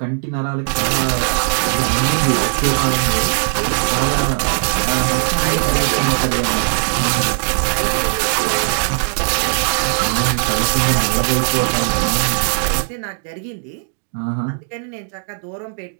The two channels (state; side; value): silent; left; digital silence